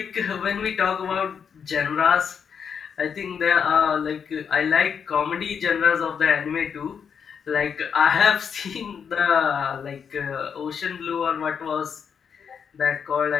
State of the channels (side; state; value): right; quieter; 7.0 dB